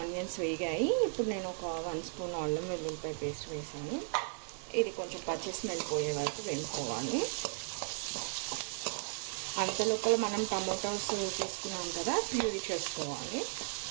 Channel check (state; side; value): silent; left; 54 dB below the other